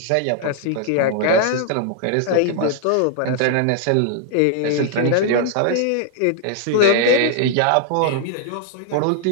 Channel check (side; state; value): both; different; correlation 0.00